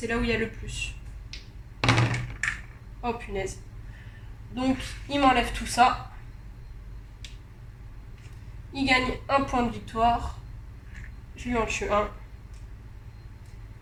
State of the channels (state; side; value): identical; both; correlation 1.00